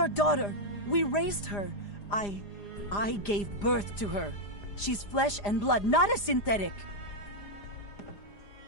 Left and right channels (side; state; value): right; late; 4.9 ms